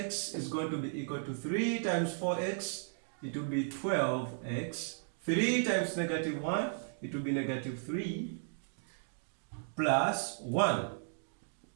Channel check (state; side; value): silent; left; digital silence